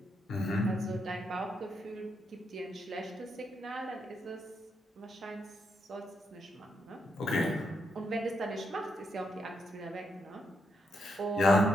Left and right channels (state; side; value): normal; both; correlation 0.80